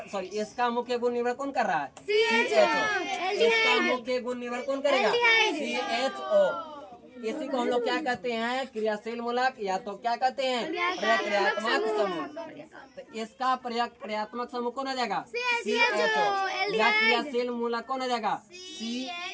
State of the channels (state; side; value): identical; both; correlation 1.00